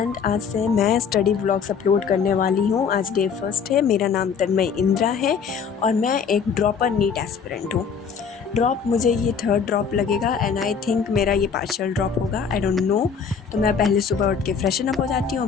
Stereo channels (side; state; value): right; quieter; 6.4 dB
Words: आज से मैं स्टडी व्लॉग्स अपलोड करने वाली हूँ। आज डे फर्स्ट है। मेरा नाम तन्मय इंद्रा है और मैं एक ड्रॉपर नीट एस्पिरेंट हूँ। ड्रॉप मुझे ये थर्ड ड्रॉप लगेगा एंड आई थिंक मेरा ये पार्शियल ड्रॉप होगा, आई डोंट नो। तो मैं पहले सुबह उठ के फ्रेशन अप हो जाती